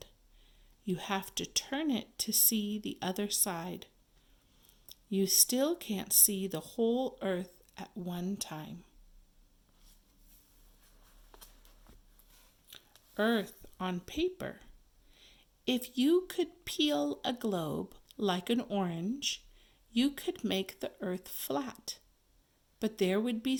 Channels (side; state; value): both; identical; correlation 1.00